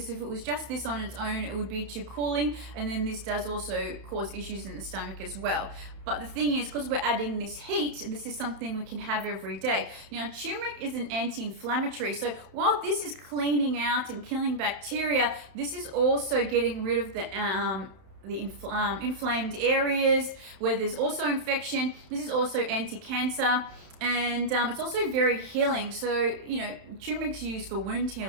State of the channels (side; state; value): left; late; 31 ms